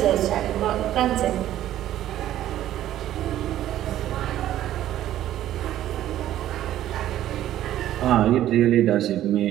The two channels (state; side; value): quieter; left; 12.8 dB